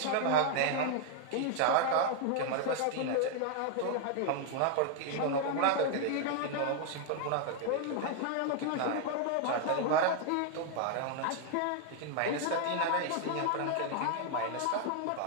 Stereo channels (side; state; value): both; different; correlation 0.00